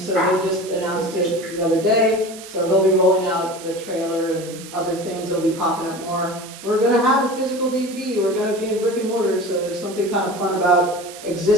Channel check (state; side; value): noise; right; hiss, 15 dB below the sound